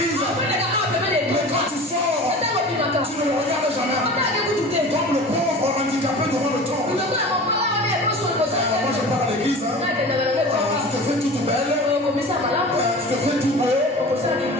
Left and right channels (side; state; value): both; normal; correlation 0.37